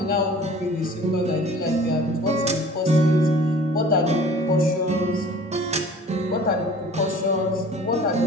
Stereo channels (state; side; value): normal; both; correlation 0.46